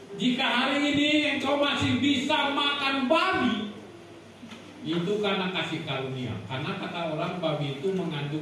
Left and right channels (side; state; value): both; identical; correlation 1.00